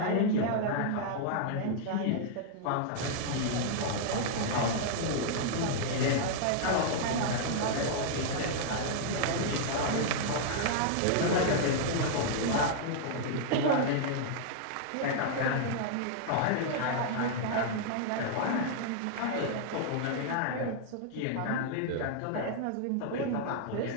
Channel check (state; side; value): different; both; correlation -0.01